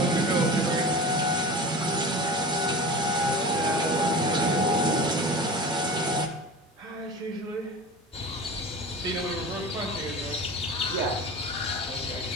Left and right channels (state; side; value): normal; both; correlation 0.33